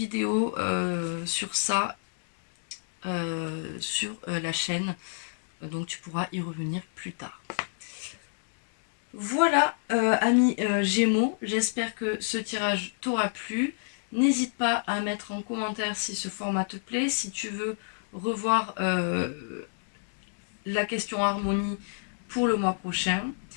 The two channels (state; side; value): silent; right; digital silence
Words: sur ça sur la chaîne. Donc tu pourras y revenir plus tard. Voilà, amis Gémeaux, j'espère que ce tirage t'aura plu. N'hésite pas à mettre en commentaire si ce format te plaît, si tu veux revoir la question harmonie pour le mois prochain.